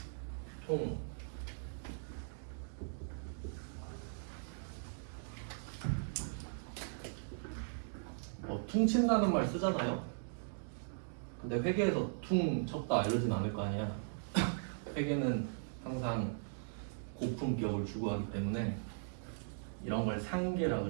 총. 뭐 퉁친다는 말 쓰잖아요. 근데 회계에서 퉁 쳤다 이러진 않을 거 아니야. 회계는 항상 고품격을 추구하기 때문에 이런 걸 상계라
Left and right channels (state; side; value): silent; left; digital silence